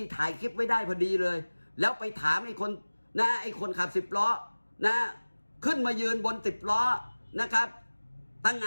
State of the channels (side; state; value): both; inverted; correlation -1.00